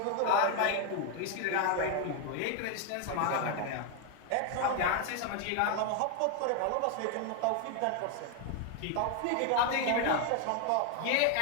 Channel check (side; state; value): both; different; correlation 0.01